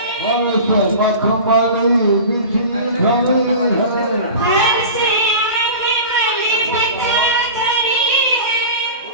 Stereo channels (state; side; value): inverted; both; correlation -0.34